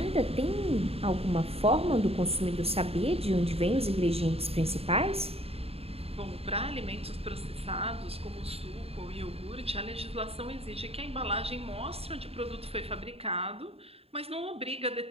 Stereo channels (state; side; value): late; left; 0.29 ms